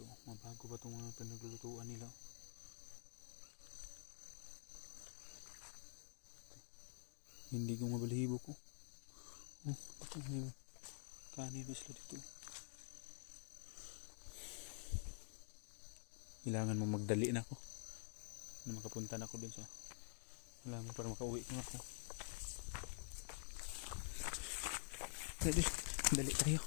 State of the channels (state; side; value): silent; right; digital silence